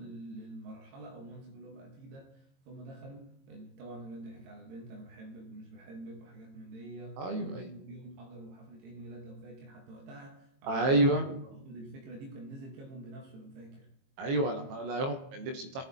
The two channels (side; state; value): left; late; 22 ms